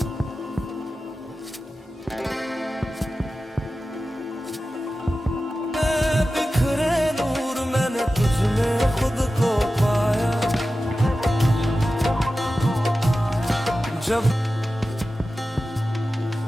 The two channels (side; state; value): both; normal; correlation 0.94